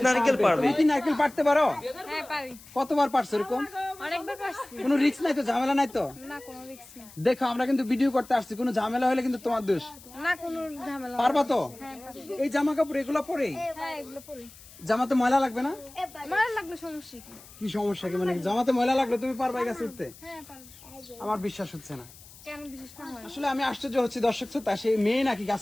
নারকেল পারবে। তুমি কি নারকেল পারতে পারো? হ্যাঁ পারি। কতবার পারছো এরকম? অনেকবার পারছি। কোনো রিস্ক নাই তো, ঝামেলা নাই তো? না কোনো রিস্ক নেই। দেখো আমরা কিন্তু ভিডিও করতে আসছি, কোনো ঝামেলা হলে কিন্তু তোমার দোষ। না কোনো ঝামেলা। পারবা তো? হ্যাঁ পারি। এই জামা কাপড় এগুলো পরেই হ্যাঁ এগুলো পরি। জামাতে ময়লা লাগবে না? মার লাগলে সমস্যা কি? কি সমস্যা কি, মানে জামাতে ময়লা লাগলে তুমি পারবা এই গাছে উঠতে? হ্যাঁ পারি। আমার বিশ্বাস হচ্ছে না। কেন বিশেষ না হয়? আসলে আমি আশ্চর্য হচ্ছি দর্শক শ্রোতা, সেই মেয়ে নাকি গাছ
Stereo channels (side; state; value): left; noise; hiss, 21 dB below the sound